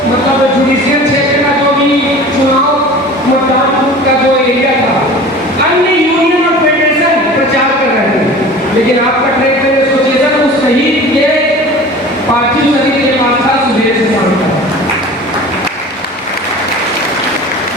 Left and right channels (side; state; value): both; normal; correlation 0.40